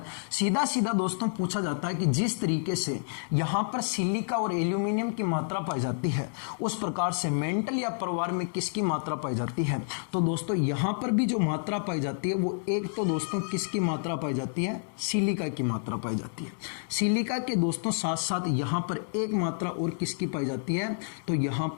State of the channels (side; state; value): right; silent; digital silence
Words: सीधा सीधा दोस्तों पूछा जाता है कि जिस तरीके से यहां पर सिलिका और एल्यूमिनियम की मात्रा पाई जाती है, उस प्रकार से मेंटल या परिवार में किसकी मात्रा पाई जाती है। तो दोस्तों यहां पर भी जो मात्रा पाई जाती है वो एक तो दोस्तों किसकी मात्रा पाई जाती है, सिलिका की मात्रा पाई जाती है। सिलिका के दोस्तों साथ साथ यहां पर एक मात्रा और किसकी पाई जाती है, तो यहां